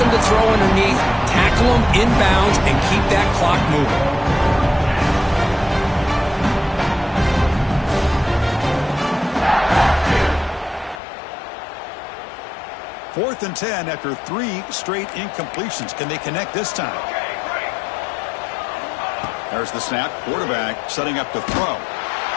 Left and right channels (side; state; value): right; drops out; at 11.0 s